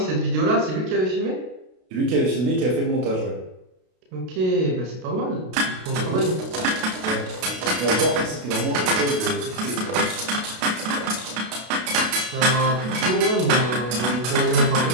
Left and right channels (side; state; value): left; late; 32 ms